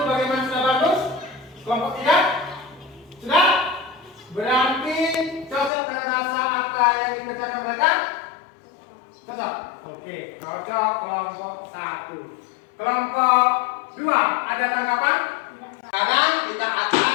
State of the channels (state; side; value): drops out; right; at 5.7 s